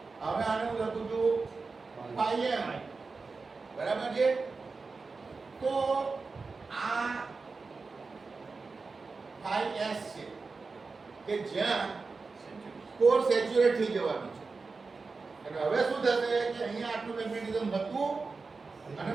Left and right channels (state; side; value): quieter; left; 4.2 dB